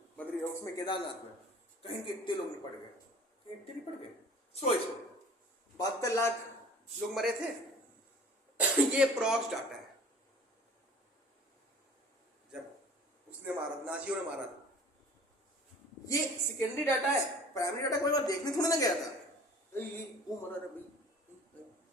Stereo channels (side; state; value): both; normal; correlation 0.46